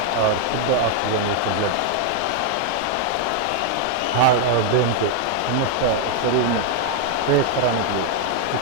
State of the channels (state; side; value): different; both; correlation 0.00